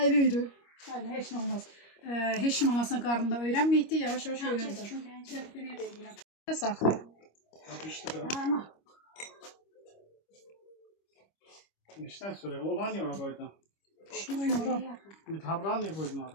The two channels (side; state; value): right; late; 25 ms